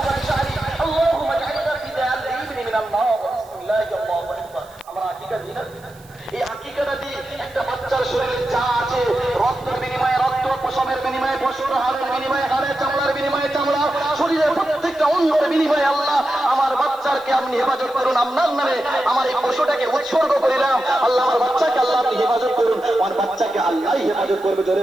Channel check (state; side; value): noise; right; hiss, 27 dB below the sound